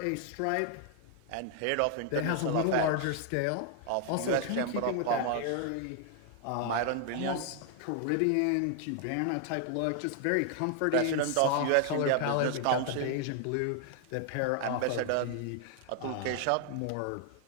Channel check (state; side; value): different; both; correlation 0.00